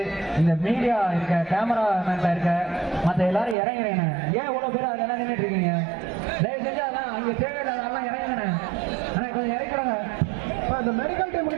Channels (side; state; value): left; drops out; at 3.6 s